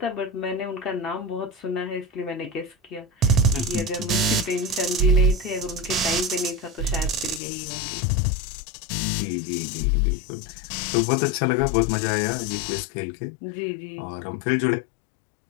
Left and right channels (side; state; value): right; drops out; at 7.4 s